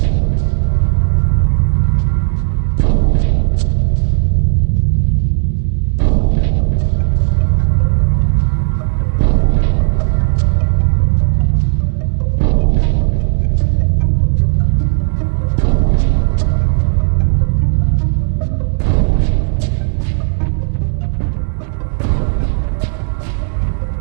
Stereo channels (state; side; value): silent; left; digital silence